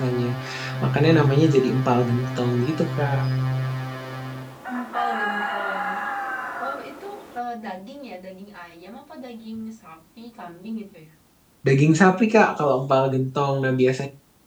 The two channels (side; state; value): both; identical; correlation 1.00